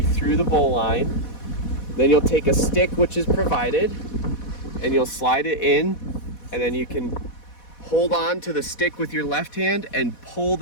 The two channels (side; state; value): right; late; 4.1 ms